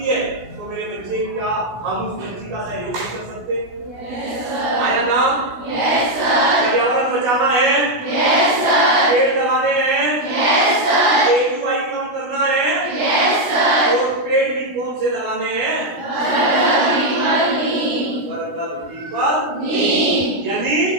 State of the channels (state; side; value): late; left; 16 ms